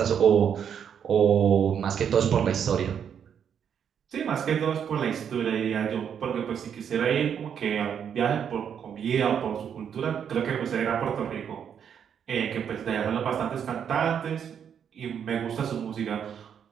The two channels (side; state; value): left; quieter; 8.1 dB